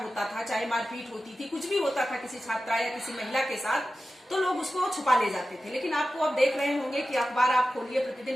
होता था, चाहे मारपीट होती थी, कुछ भी होता था किसी छात्रा या किसी महिला के साथ, तो लोग उसको छुपा ले जाते थे। लेकिन आपको अब देख रहे होंगे कि अखबार आप खोलिए, प्रतिदिन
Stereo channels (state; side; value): normal; both; correlation 0.94